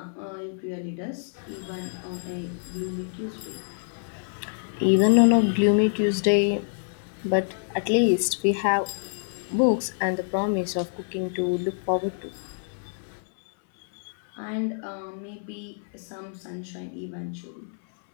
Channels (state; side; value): silent; right; 58 dB below the other